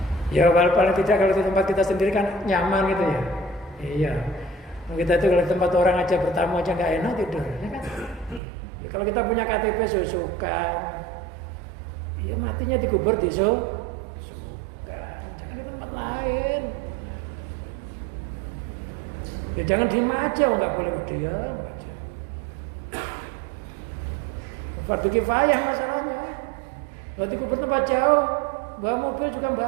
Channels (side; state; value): left; drops out; at 8.4 s